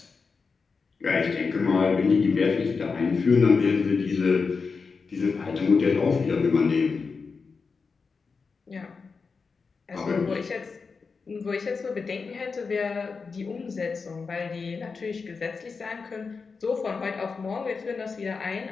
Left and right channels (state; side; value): quieter; right; 4.9 dB